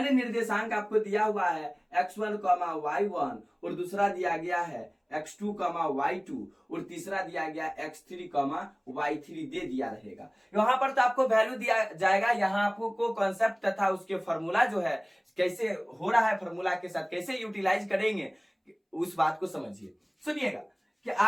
निर्देशांक आपको दिया हुआ है x1, y1 और दूसरा दिया गया है x2 कॉमा y2 और तीसरा दिया गया x3 कॉमा y3 दे दिया रहेगा। यहाँ पर तो आपको वैल्यू दिया जाएगा, यहाँ आपको कॉन्सेप्ट तथा उसके फॉर्मूला जो है कैसे हो रहा है, फॉर्मूला के साथ कैसे यूटिलाइज करेंगे उस बात को समझिए। सुनिएगा कि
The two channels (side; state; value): both; identical; correlation 1.00